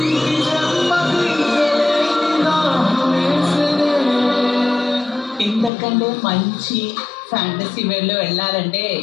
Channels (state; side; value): drops out; right; at 5.7 s